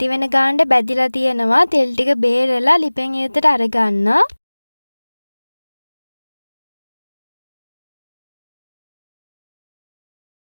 වෙන ගානට බැදිලා තියෙනවා. තෙල් ටික බේරලා ලිපෙන් ඉවතට අරගන්න.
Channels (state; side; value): inverted; both; correlation -1.00